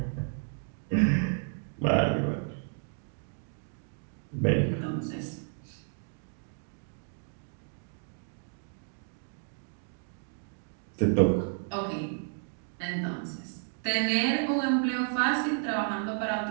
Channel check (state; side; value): silent; left; 57 dB below the other